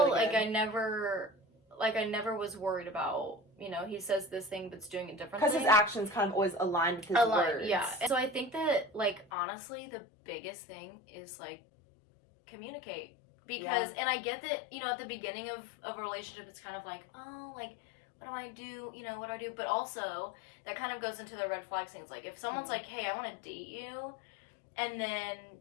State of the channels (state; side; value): drops out; right; at 9.2 s